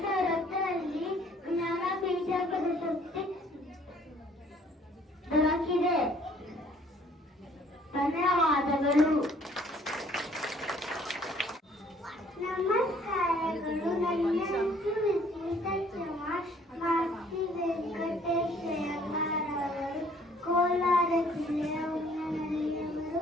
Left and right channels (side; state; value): both; normal; correlation 0.59